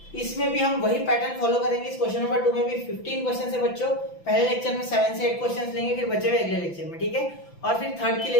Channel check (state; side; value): late; right; 5.9 ms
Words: इसमें भी हम वही पैटर्न फॉलो करेंगे। इस क्वेश्चन नंबर 2 में भी 15 क्वेश्चन है बच्चों। पहले लेक्चर में 7 से 8 क्वेश्चन लेंगे, फिर बचे हुए अगले लेक्चर में, ठीक है। और फिर थर्ड के